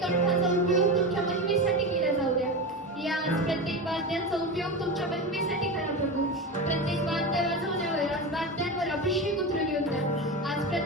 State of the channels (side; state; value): both; normal; correlation 0.22